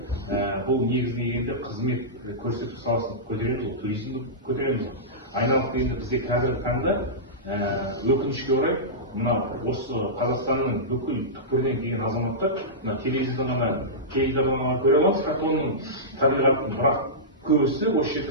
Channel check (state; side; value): normal; both; correlation -0.15